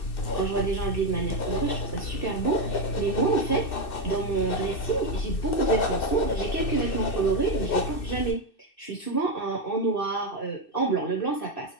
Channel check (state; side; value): late; right; 2.6 ms